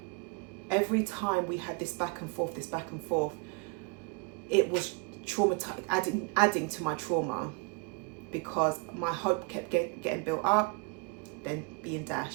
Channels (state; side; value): quieter; left; 29.4 dB